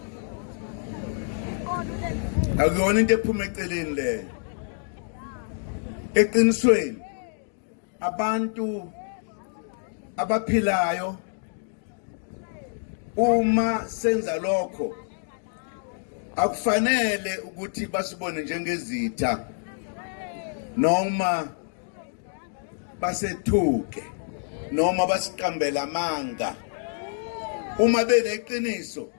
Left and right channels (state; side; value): silent; right; digital silence